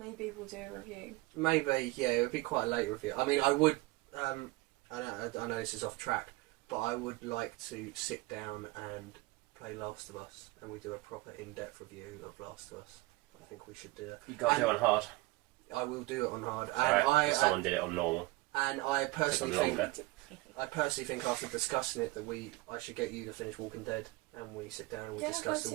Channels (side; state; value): left; quieter; 21.8 dB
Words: we'll do a review. Maybe, yeah, it would be quite a late review. I mean, I would. I know this is off track, but I would like to sit down and play Last of Us, and we do a proper in-depth review of Last of Us. I think we should do that. You got to do it on hard. I will do it on hard. And someone did it on normal. And I personally think after discussing it that I should get you to finish Walking Dead, and we sit down and we discuss